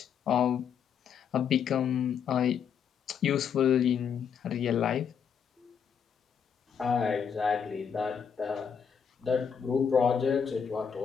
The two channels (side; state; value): right; quieter; 7.3 dB